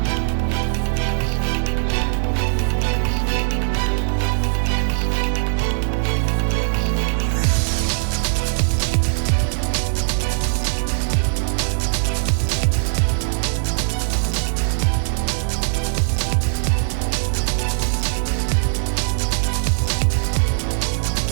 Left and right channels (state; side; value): silent; left; digital silence